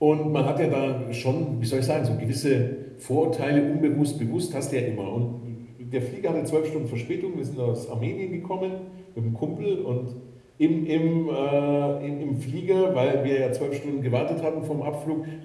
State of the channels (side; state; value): both; identical; correlation 1.00